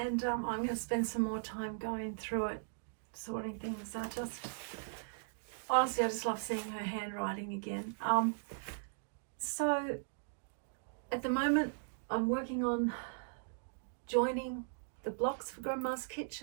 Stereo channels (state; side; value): silent; left; digital silence